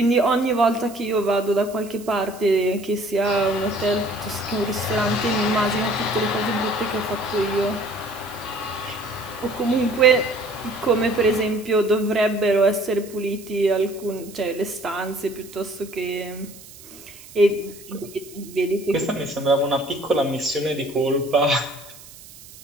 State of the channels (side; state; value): right; noise; hiss, 19 dB below the sound